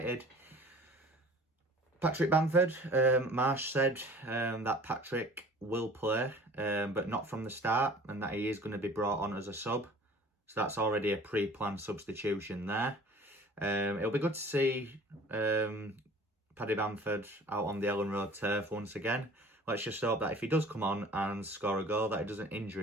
Patrick Bamford, Marsch said that Patrick will play, but not from the start, and that he is going to be brought on as a sub. So that's already a pre-planned substitution there. It'll be good to see Paddy Bamford out on the Elland Road turf once again. Let's just hope that if he does come on and score a goal, that he doesn't injure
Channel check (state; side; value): normal; both; correlation 0.46